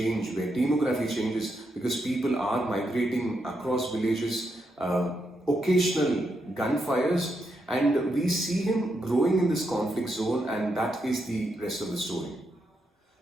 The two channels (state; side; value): normal; both; correlation 0.82